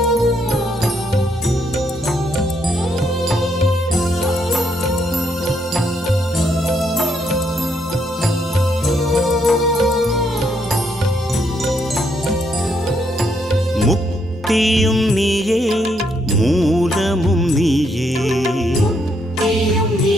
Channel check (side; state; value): both; normal; correlation 0.74